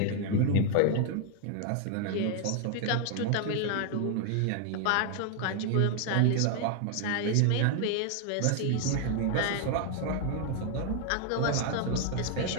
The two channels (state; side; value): different; both; correlation 0.00